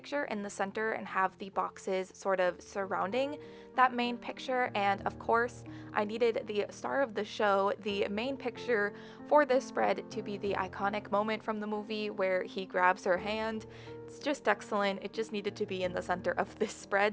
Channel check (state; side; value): identical; both; correlation 1.00